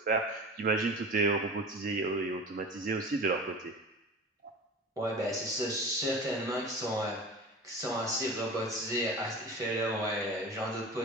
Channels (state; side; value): normal; both; correlation 0.34